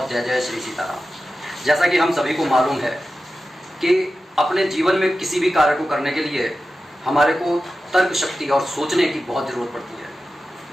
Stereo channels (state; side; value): normal; both; correlation 0.93